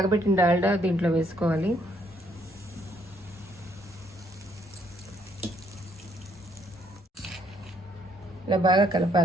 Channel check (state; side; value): normal; both; correlation 0.69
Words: డాల్డా దీంట్లో వేసుకోవాలి. ఇలా బాగా